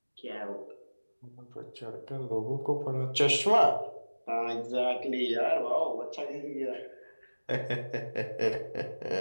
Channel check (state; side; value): inverted; both; correlation -1.00